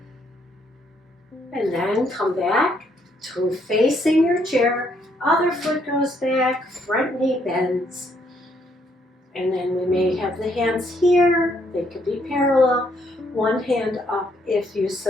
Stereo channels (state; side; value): normal; both; correlation 0.71